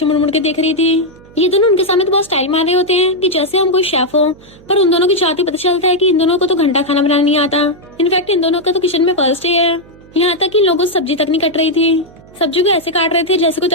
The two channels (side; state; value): right; noise; hum, 24 dB below the sound